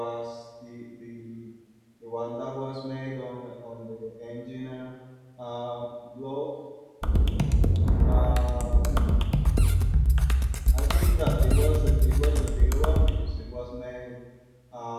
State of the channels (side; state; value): both; identical; correlation 1.00